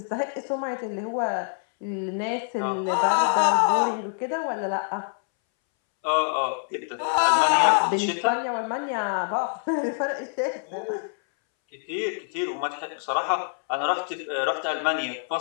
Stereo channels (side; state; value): right; silent; 61 dB below the other